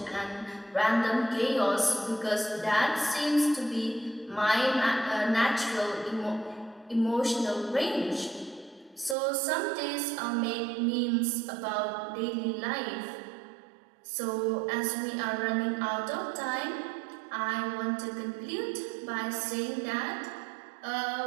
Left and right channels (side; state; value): left; drops out; at 9.2 s